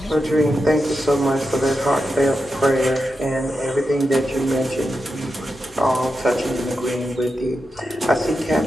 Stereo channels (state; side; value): noise; right; hum, 29 dB below the sound